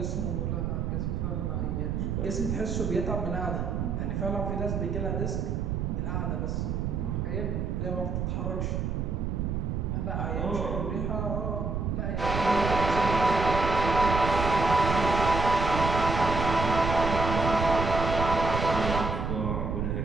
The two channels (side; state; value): right; noise; rumble, 1 dB below the sound